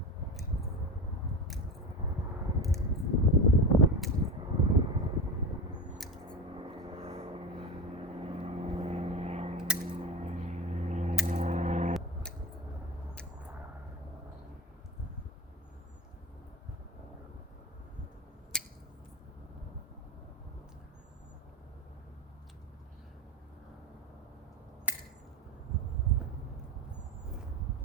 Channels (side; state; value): both; normal; correlation 0.23